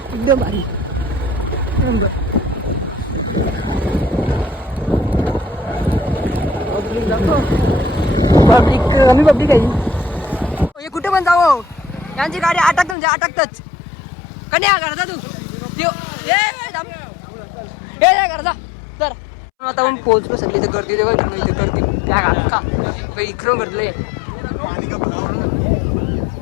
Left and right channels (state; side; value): drops out; right; at 13.0 s